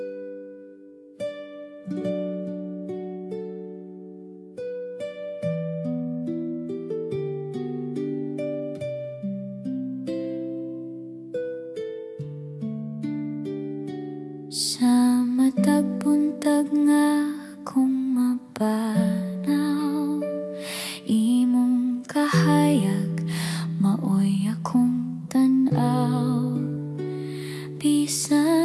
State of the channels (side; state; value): both; identical; correlation 1.00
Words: Sa matag buntag nga akong mapanaw, imong kahayag maoy akong tan-aw.